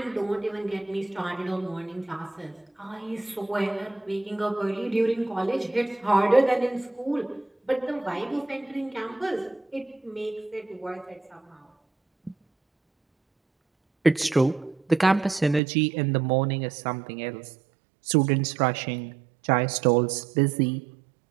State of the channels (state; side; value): drops out; left; at 15.6 s